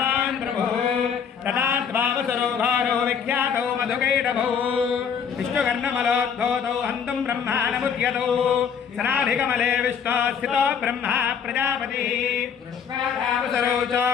प्रभुः तदाद्भावसरो भारो विख्यातो मधुकैटभौ विष्णुकर्णमलोद्भूतौ हन्तुं ब्रह्माणमुद्यतौ सनाभिकमले विष्णो स्थितो ब्रह्मा प्रजापतिः कृष्णावसरो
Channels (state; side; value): quieter; right; 7.2 dB